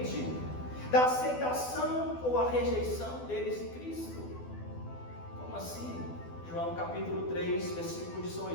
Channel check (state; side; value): late; right; 12 ms